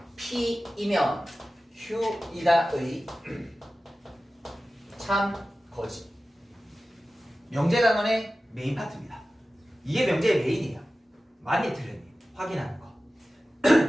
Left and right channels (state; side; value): normal; both; correlation 0.95